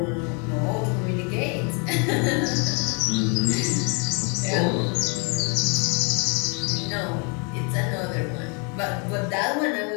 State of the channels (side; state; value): right; quieter; 35.5 dB